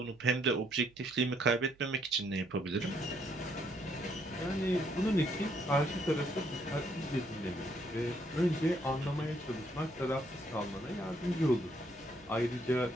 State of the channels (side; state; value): right; noise; hum, 28 dB below the sound